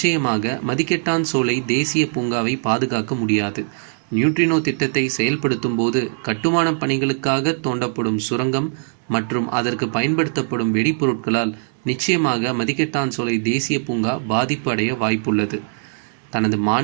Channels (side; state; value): left; silent; digital silence